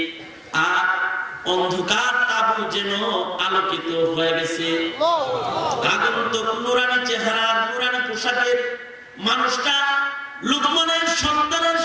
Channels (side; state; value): both; identical; correlation 1.00